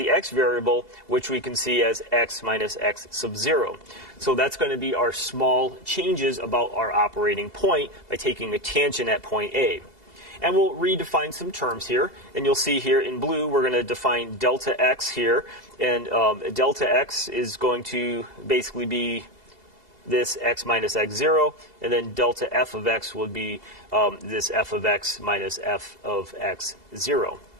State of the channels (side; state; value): left; late; 2.7 ms